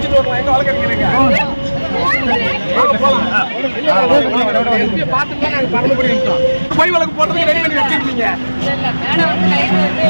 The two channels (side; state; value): both; inverted; correlation -1.00